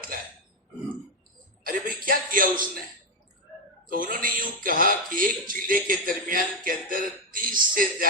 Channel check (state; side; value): normal; both; correlation 0.06